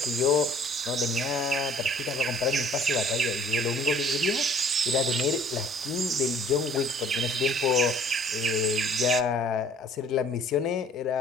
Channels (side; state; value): both; normal; correlation 0.54